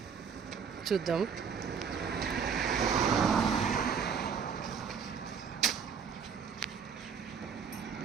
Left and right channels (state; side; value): quieter; left; 6.6 dB